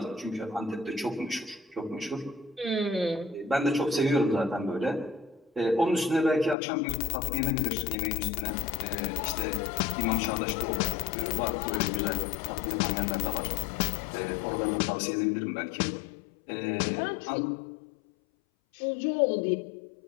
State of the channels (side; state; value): right; drops out; at 6.6 s